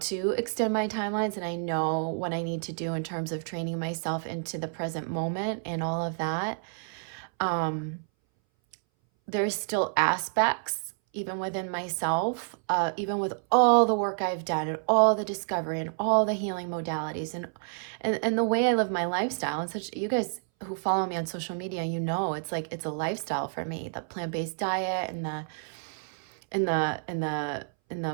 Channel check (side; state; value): left; silent; 59 dB below the other